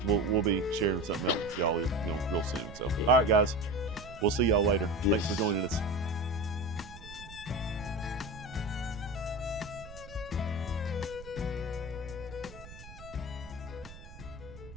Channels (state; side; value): noise; right; rumble, 16 dB below the sound